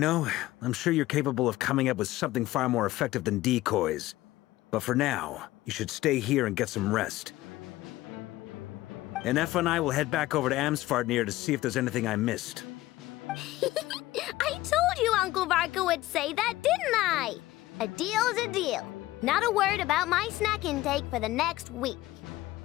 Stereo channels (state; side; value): quieter; right; 17.0 dB